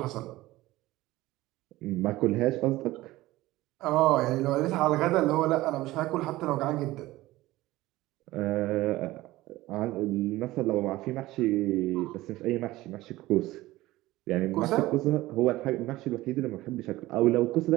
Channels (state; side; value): quieter; left; 17.8 dB